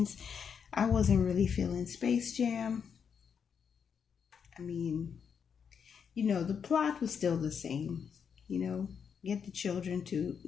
I wasn't really feeling Space Jam. I mean, you know, the plot was still the same. You know, get the children to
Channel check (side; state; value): right; quieter; 6.9 dB